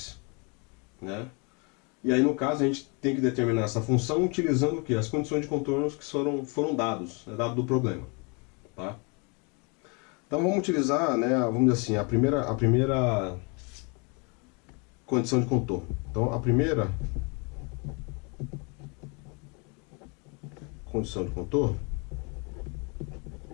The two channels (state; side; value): quieter; right; 32.6 dB